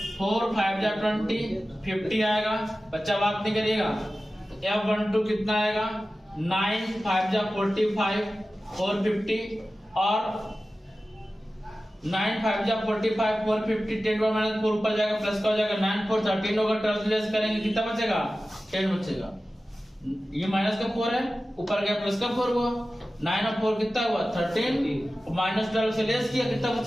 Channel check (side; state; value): both; normal; correlation 0.95